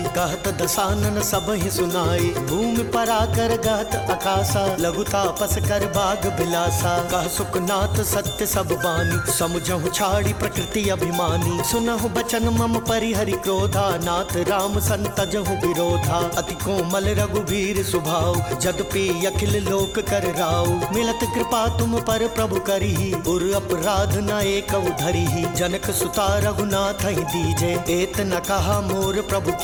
कहत दसानन सब ही सुनाई। भूमि पराकर गहत आकाशा, लघु तापस कर बाग बिलासा। कह सुखनाथ सत्य सब बानी, समुझहु छाड़ी प्रकृति अभिमानी। सुनहु बचन मम परिहरि क्रोधा, नाथ राम संतजहु विरोधा। अति कोमल रघुवीर सुभाव, जदपि अखिल लोक कर राव। मिलत कृपा तुम पर प्रभु करिहि, उर अपराध न एक धरिहि। जनक सुता रघुनाथ ही दीजे, एत न कहा मोर प्रभु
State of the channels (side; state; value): both; identical; correlation 1.00